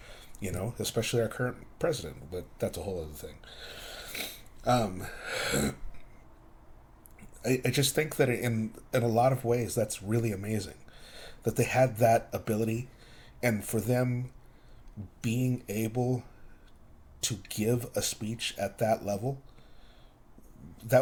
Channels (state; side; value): identical; both; correlation 1.00